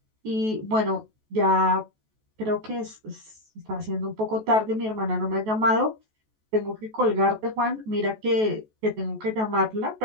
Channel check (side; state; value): left; late; 14 ms